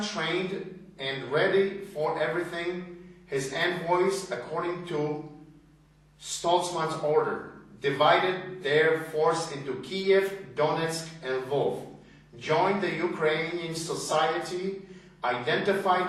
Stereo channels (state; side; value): identical; both; correlation 1.00